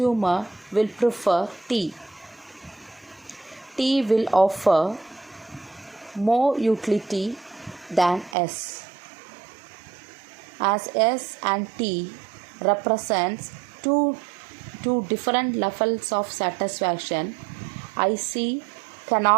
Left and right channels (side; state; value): left; drops out; at 8.3 s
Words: will prefer T. T will offer more utility than S. As S and T represents two different levels of satisfaction, IC